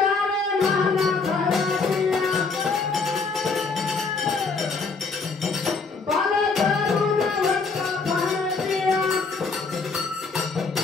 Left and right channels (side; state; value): right; quieter; 4.4 dB